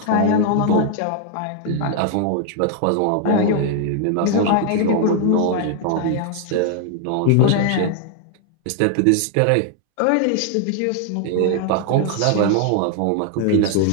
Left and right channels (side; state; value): both; different; correlation 0.00